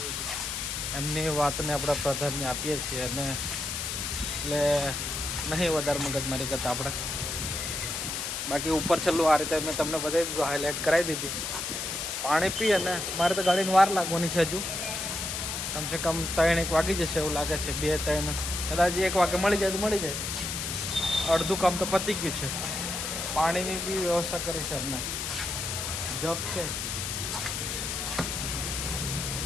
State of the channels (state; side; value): noise; left; hiss, 3 dB below the sound